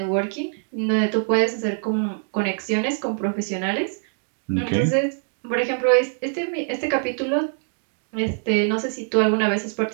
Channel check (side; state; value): left; silent; 63 dB below the other